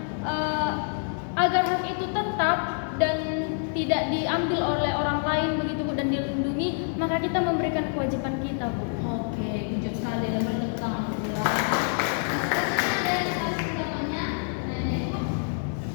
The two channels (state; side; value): silent; right; 58 dB below the other